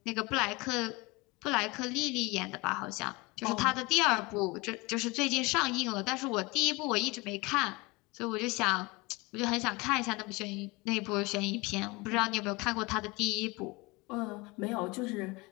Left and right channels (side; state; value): right; quieter; 24.6 dB